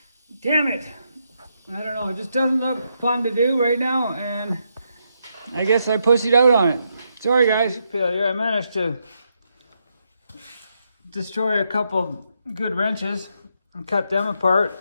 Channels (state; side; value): inverted; both; correlation -0.80